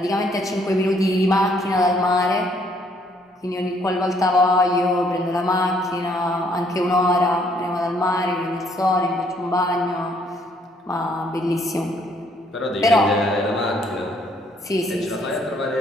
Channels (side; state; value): both; normal; correlation 0.66